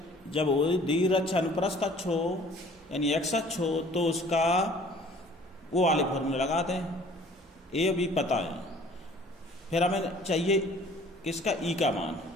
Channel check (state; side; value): normal; both; correlation 0.52